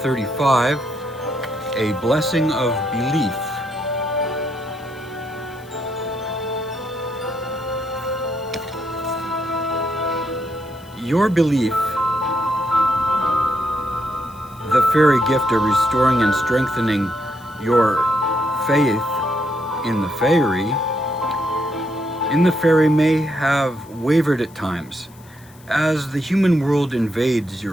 a blessing of belief. Your belief, the fairy gift of restoring and strengthening your faith in the fairy may have wavered at times, as the human world invades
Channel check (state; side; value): noise; left; hiss, 26 dB below the sound